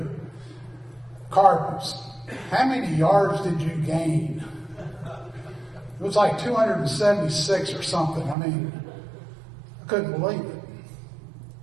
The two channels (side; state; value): left; drops out; at 8.3 s